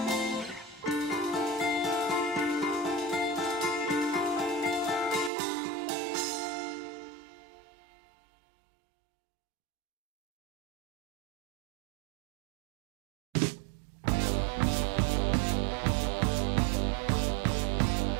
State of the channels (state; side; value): drops out; left; at 5.3 s